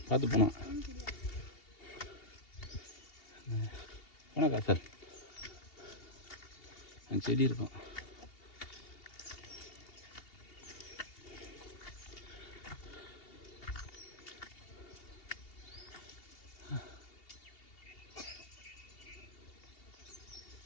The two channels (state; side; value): late; right; 2.8 ms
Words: பார்த்து போனோம். போனா காசல் அந்த செடி இருக்கும்.